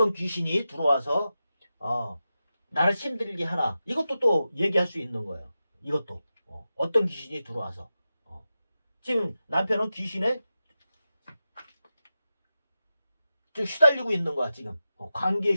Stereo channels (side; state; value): both; inverted; correlation -0.91